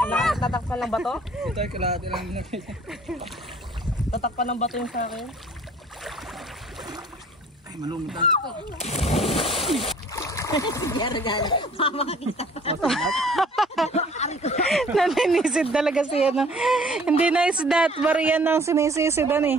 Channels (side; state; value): both; normal; correlation 0.53